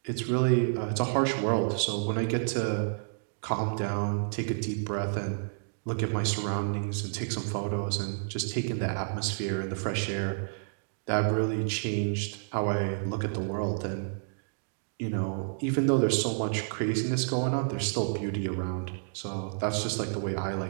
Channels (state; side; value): silent; left; digital silence